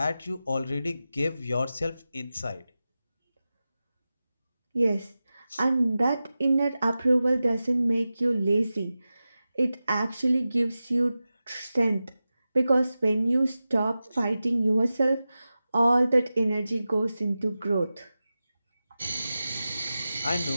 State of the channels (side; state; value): both; inverted; correlation -0.94